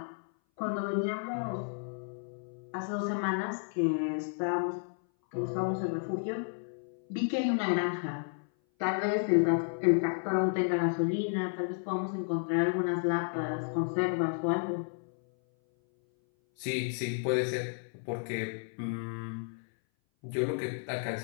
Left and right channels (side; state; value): right; silent; 56 dB below the other